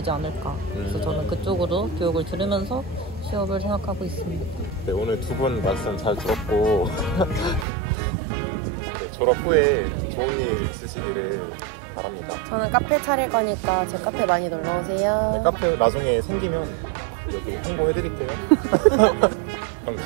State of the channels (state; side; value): drops out; left; at 7.7 s